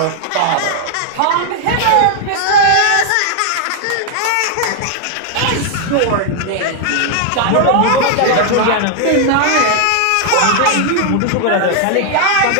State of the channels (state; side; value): different; both; correlation 0.00